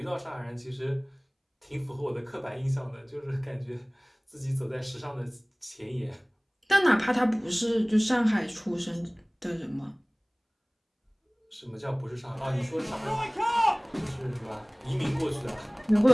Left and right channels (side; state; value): both; identical; correlation 1.00